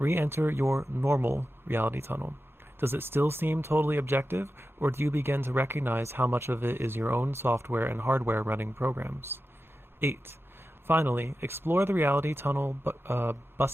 your normal reality tunnel. Does it still seem totally objective, or do you begin to recognize how much of it is your own software and hardware running programs? 8. Finally, explore the reality tunnel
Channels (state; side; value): normal; both; correlation 0.92